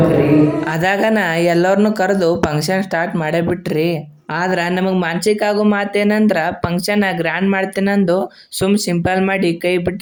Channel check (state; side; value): identical; both; correlation 1.00